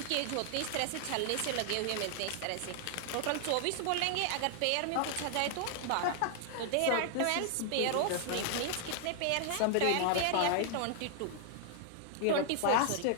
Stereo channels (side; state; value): both; different; correlation 0.00